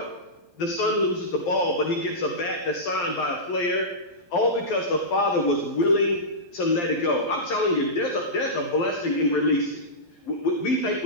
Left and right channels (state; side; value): late; right; 11 ms